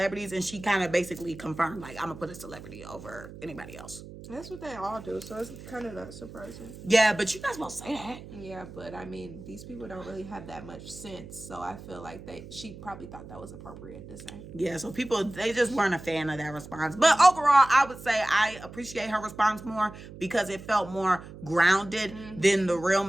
And she kind of basically confirmed like, I'm going to put a celebrity over anybody else. That's what they all do, so it's kind of not surprising. Yeah, but you're not supposed to say that. Yeah, but I mean, these people don't really have that much sense, so I feel like she probably thought that was appropriate to say. Yeah, so people, they just weren't a fan of that response. But overall, I would say I appreciate her response more because it felt more grounded than the real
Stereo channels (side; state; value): right; noise; hum, 15 dB below the sound